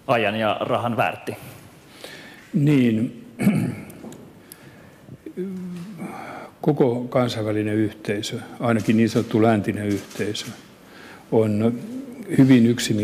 ajan ja rahan väärti? Niin, koko kansainvälinen yhteisö, ainakin niin sanottu läntinen yhteisö, on hyvin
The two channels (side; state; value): both; identical; correlation 1.00